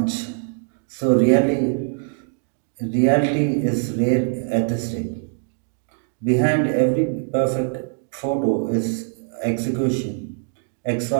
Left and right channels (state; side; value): silent; left; digital silence